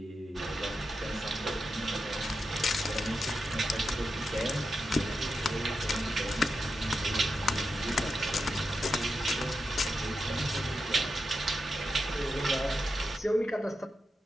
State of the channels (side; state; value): both; normal; correlation 0.88